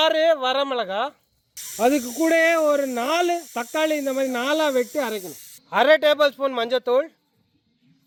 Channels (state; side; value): identical; both; correlation 1.00